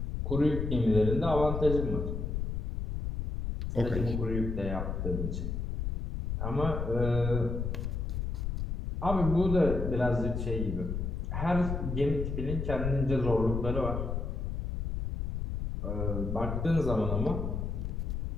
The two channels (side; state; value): left; noise; rumble, 2 dB below the sound